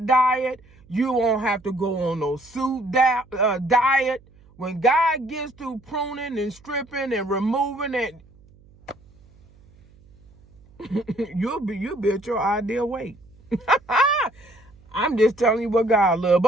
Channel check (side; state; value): right; noise; hum, 27 dB below the sound